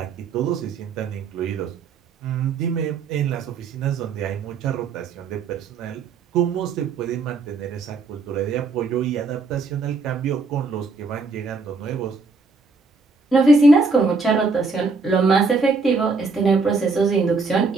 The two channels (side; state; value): left; quieter; 4.0 dB